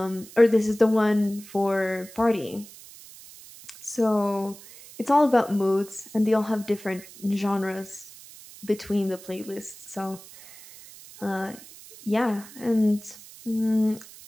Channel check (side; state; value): right; noise; hiss, 19 dB below the sound